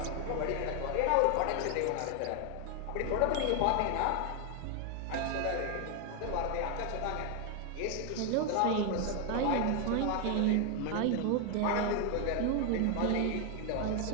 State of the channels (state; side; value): different; both; correlation 0.01